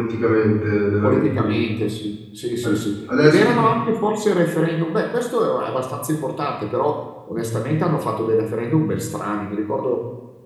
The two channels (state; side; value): identical; both; correlation 1.00